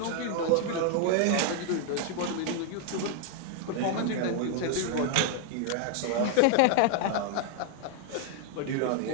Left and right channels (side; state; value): both; different; correlation 0.00